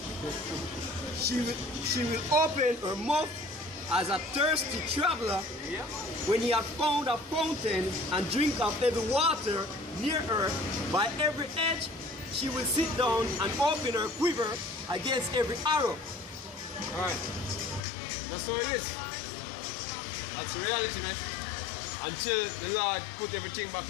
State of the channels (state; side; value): drops out; right; at 17.8 s